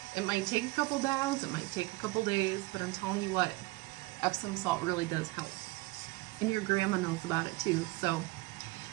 It might take a couple days, it might take a couple days, but I'm telling you what, Epsom salt really does help. And your grandma knows about it too, so.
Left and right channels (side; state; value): left; quieter; 22.3 dB